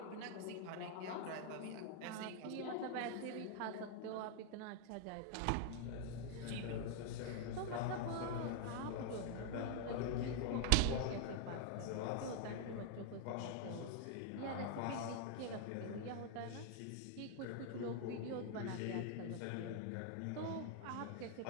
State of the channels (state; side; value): different; both; correlation 0.00